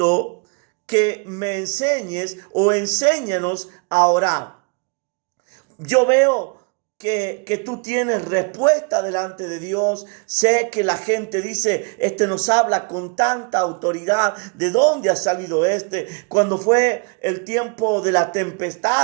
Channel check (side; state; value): left; quieter; 35.3 dB